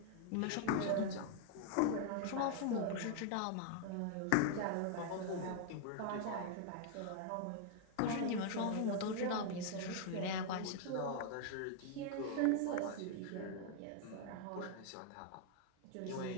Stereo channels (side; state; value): both; different; correlation 0.00